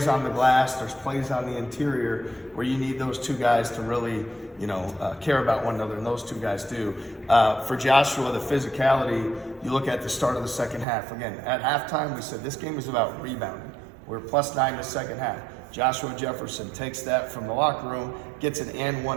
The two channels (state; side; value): drops out; left; at 10.9 s